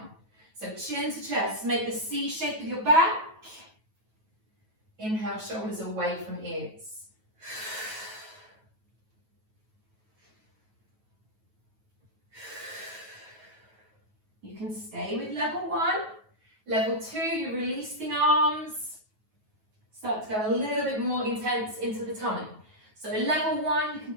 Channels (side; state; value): left; late; 9.3 ms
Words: So chin to chest, make the C shape with your back. Inhale, shoulders away from ears. You can stay with level 1. Level 2, you release the arms. Start to go a little bit more intense into the tummy. So level 1, you can